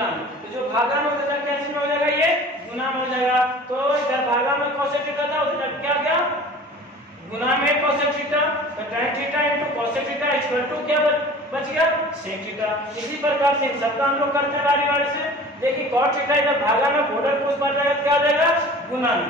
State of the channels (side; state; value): both; normal; correlation 0.42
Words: में, तो जो भागा में उधर क्या चीज में हो जाएगा ये गुना में हो जाएगा। तो इधर भागा में कोसेक थीटा था उधर क्या गया गुना में कोसेक थीटा, तो tan theta into cosec theta equal to क्या बच गया सेक थीटा। इसी प्रकार से सबका हम लोग करते हैं बारी बारी से। देखिए cot थीटा इधर भागा में बॉर्डर को उस पर जाएगा क्या हो जाएगा गुना